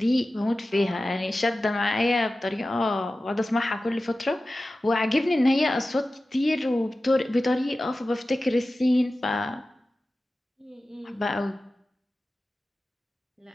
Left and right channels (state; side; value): normal; both; correlation 0.95